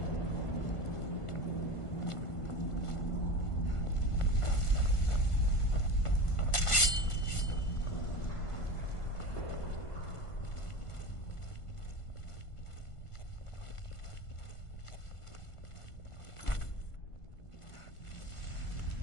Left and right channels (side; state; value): right; late; 1.5 ms